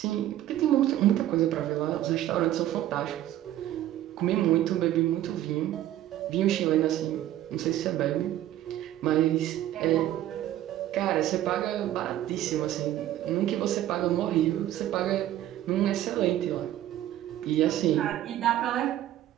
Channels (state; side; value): quieter; left; 13.0 dB